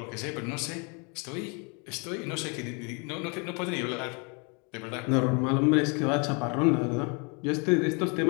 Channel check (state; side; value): quieter; right; 33.6 dB